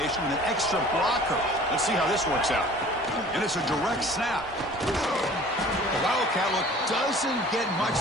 with an extra blocker. Let's see how this works out. And it's a direct snap. The Wildcat look doesn't get much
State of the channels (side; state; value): both; normal; correlation 0.47